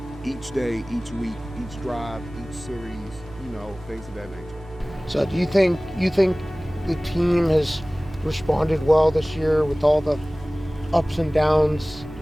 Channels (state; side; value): noise; right; hum, 19 dB below the sound